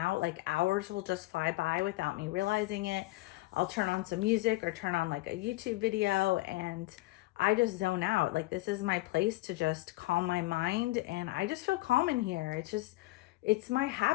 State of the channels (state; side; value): quieter; right; 20.0 dB